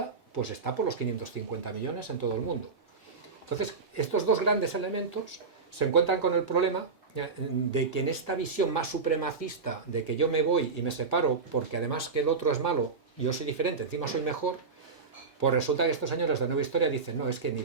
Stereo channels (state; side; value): quieter; left; 4.8 dB